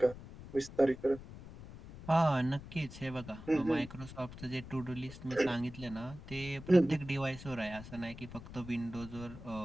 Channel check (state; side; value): noise; left; rumble, 14 dB below the sound